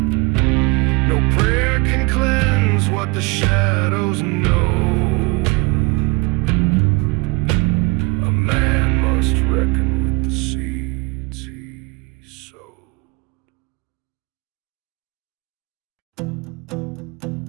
No prayer can cleanse what the shadows know. A man must reckon with the seeds he sowed.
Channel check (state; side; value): quieter; left; 27.3 dB